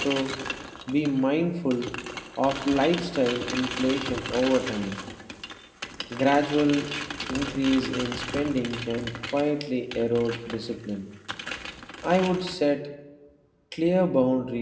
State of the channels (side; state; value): both; identical; correlation 1.00